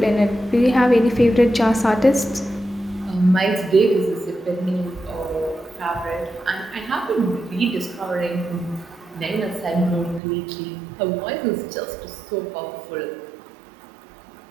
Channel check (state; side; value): drops out; left; at 10.2 s